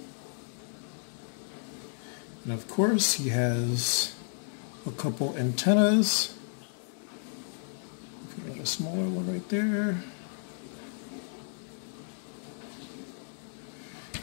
And of course he has a couple antennas. Put a smaller one right there.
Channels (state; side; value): silent; right; digital silence